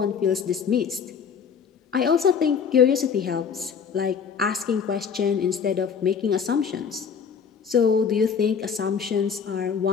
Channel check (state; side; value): quieter; right; 6.6 dB